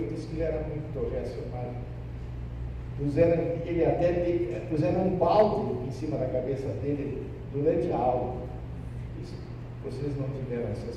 disse que ele era muito reacionário. Puseram um balde em cima da cabeça dele durante a aula. Isso, vocês não tiveram essa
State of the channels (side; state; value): both; identical; correlation 1.00